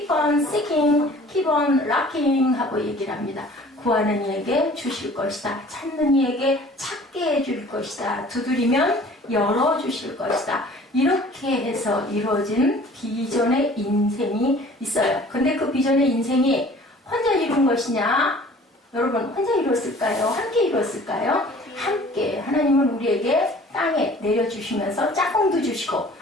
on seeking, keep on knocking 하고 얘기를 합니다. 구하는 이에게 주실 것이다. 찾는 이에게 찾게 해줄 것이다. 두드리면 열어주실 것이다. 이렇게 해서 이루어진 비전의 인생이 있어요. 근데 그 비전의 인생이 혼자 이룬 것이냐? 여러분 혼자 이루었을까요? 함께 이루었을까요? 함께. 하나님은 우리에게 땅에 내려주시면서 짝꿍도 주시고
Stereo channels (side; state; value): both; normal; correlation 0.49